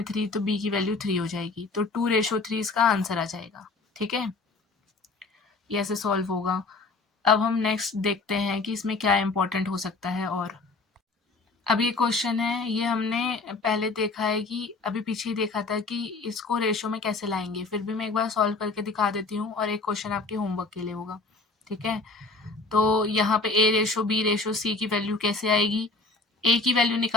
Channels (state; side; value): quieter; right; 3.7 dB